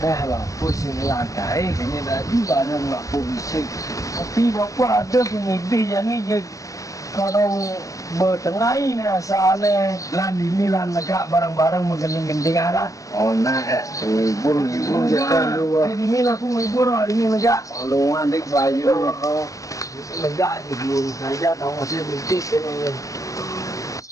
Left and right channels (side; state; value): right; late; 0.16 ms